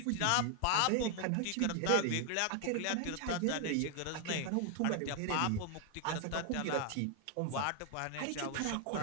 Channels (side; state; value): both; different; correlation 0.01